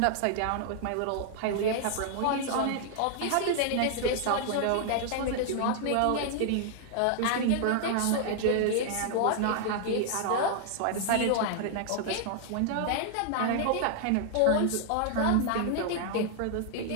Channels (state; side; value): different; both; correlation -0.01